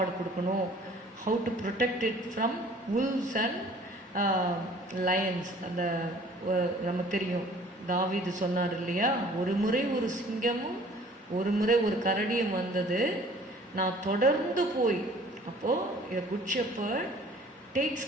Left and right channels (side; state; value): both; normal; correlation 0.52